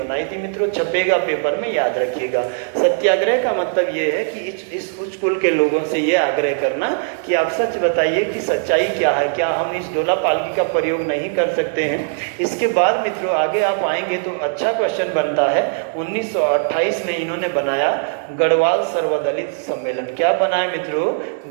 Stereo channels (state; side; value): silent; left; digital silence